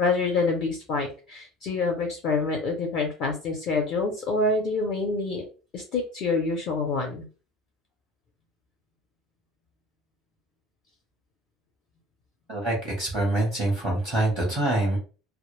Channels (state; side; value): normal; both; correlation 0.45